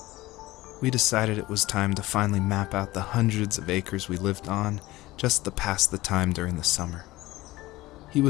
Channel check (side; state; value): right; quieter; 18.5 dB